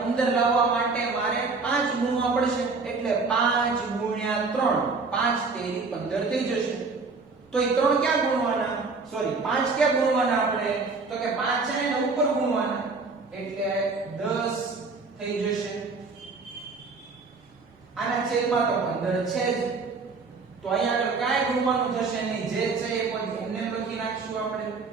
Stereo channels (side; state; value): left; quieter; 4.2 dB